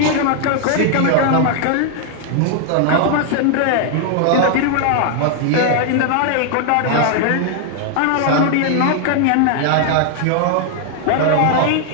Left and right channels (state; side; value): different; both; correlation 0.00